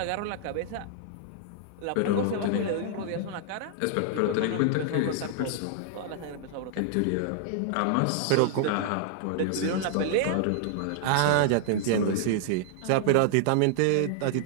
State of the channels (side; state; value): both; different; correlation -0.01